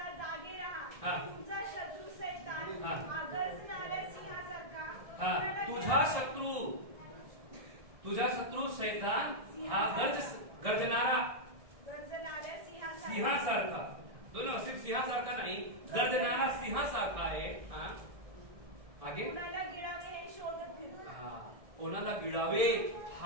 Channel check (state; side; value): late; left; 1.7 ms